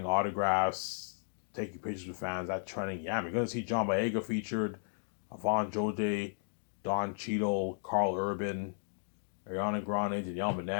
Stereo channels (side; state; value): right; silent; digital silence